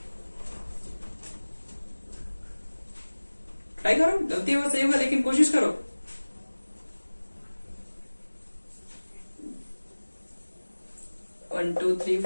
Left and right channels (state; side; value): inverted; both; correlation -1.00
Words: ट्राई करो, गलती होगा सही होगा लेकिन कोशिश करो। One two three